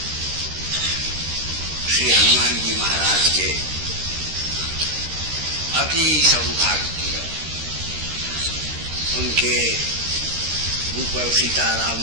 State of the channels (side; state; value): left; late; 13 ms